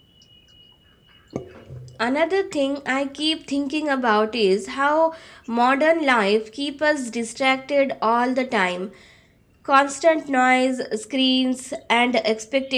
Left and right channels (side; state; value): both; identical; correlation 1.00